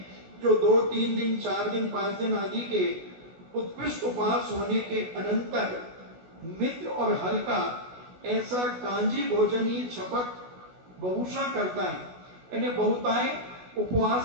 जो 2, 3 दिन, 4 दिन, 5 दिन आदि के उत्कृष्ट उपवास होने के अनंतर मित्र और हल्का ऐसा कांजी भोजन ही छपक बहुशा करता है। यानी बहुताय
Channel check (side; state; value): left; late; 16 ms